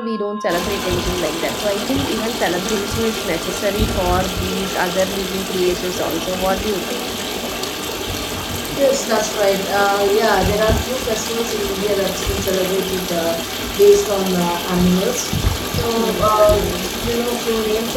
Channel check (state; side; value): identical; both; correlation 1.00